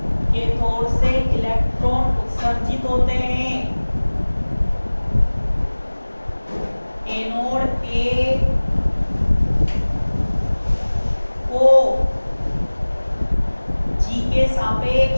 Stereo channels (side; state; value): both; inverted; correlation -1.00